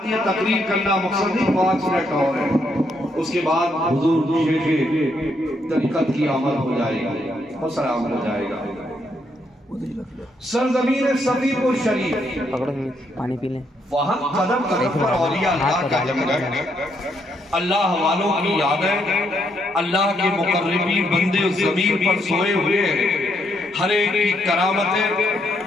یہ تقریر کرنا مقصد نہیں، 5 منٹ اور ہے، اس کے بعد حضور شیخ طریقت کی آمد ہو جائے گی اور سلام ہو جائے گا۔ سرزمین صفی پور شریف، پانی پی لیں، وہاں قدم قدم پر اولیاء اللہ کا جنگل ہے، اللہ والوں کی یادیں، اللہ کے مقربین بندے زمین پر سوئے ہوئے ہیں، ہر ایک کی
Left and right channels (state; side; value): normal; both; correlation 0.75